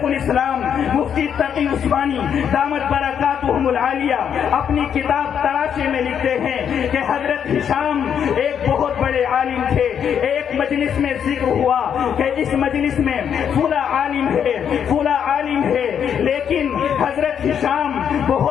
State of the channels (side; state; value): right; quieter; 8.3 dB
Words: الاسلام مفتی تقی عثمانی دامت برکاتہم العالیہ اپنی کتاب تراشے میں لکھتے ہیں کہ حضرت ہشام ایک بہت بڑے عالم تھے. ایک مجلس میں ذکر ہوا کہ اس مجلس میں فلاں عالم ہے, فلاں عالم ہے, لیکن حضرت ہشام